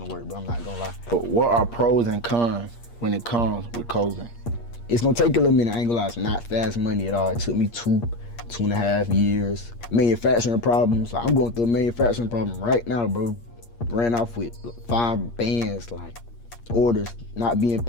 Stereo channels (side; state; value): right; late; 8.5 ms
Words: work, but I'm not gonna lie. But what are pros and cons when it comes with clothing? It's gonna take a little minute, I ain't gonna lie, it's not fast money at all. It took me 2.5 years. Manufacturing problems, I'm going through a manufacturing problem right now, bro. Ran off with 5 bands, orders not being